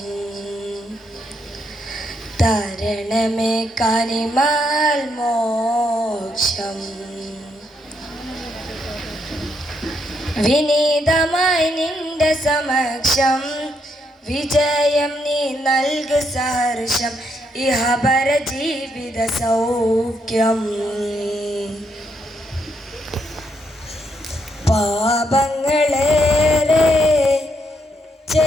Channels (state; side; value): normal; both; correlation 0.77